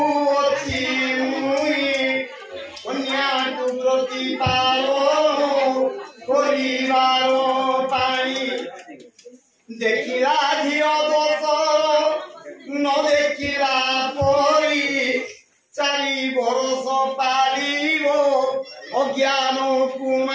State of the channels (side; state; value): both; identical; correlation 1.00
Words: মুই কন্যাকু প্রতিপালন করিবার পাই দেখিলা ঝিও দোষ ন দেখিলা পরি 4 বরষ পালিব অজ্ঞান